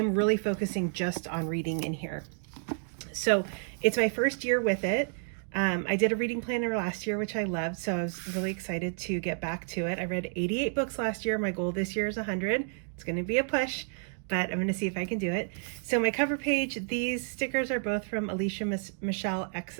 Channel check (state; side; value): silent; left; 58 dB below the other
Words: really focusing just on reading in here. So it's my first year with it. I did a reading planner last year, which I loved, so I was really excited to get back to it. I read 88 books last year. My goal this year is 100. It's going to be a push, but I'm going to see if I can do it. So my cover page, these stickers are both from Alicia Michelle